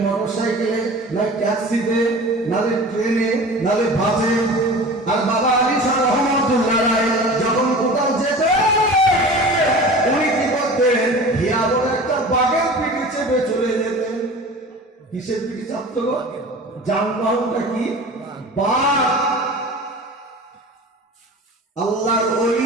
মোটর সাইকেলে, নাই ট্যাক্সিতে, নালে ট্রেনে, নালে বাসে। আর বাবা আলী শাহ রহমাতুল্লাহ আলাইহি যখন কোথাও যেতেন, উনি কি করতেন? হিয়া বলে একটা বাঘের পিঠে চেপে চলে যেতেন। কিসের পিঠে চাপতো গো? যানবাহনটা কি? বাঘ। আল্লাহর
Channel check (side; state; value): both; normal; correlation 0.38